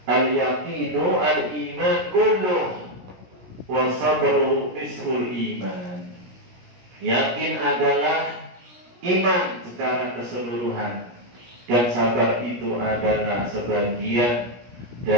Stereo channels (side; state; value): left; late; 17 ms